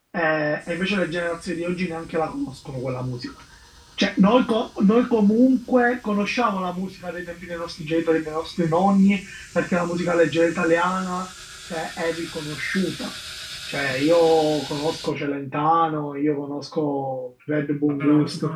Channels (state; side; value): identical; both; correlation 1.00